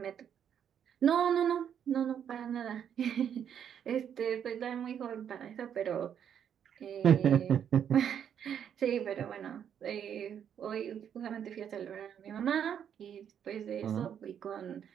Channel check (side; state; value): left; quieter; 8.7 dB